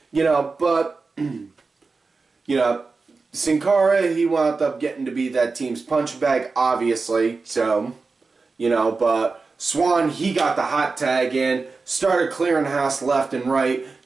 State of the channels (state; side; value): quieter; left; 4.2 dB